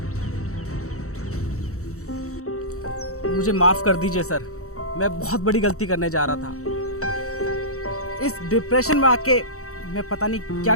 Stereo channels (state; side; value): late; right; 0.64 ms